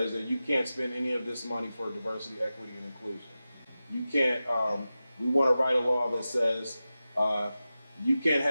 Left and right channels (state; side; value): inverted; both; correlation -0.94